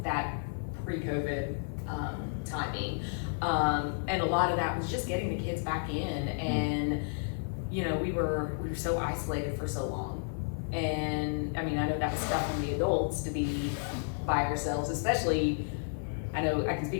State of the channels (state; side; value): silent; right; digital silence